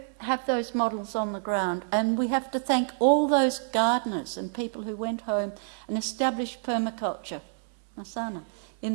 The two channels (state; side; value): silent; left; 59 dB below the other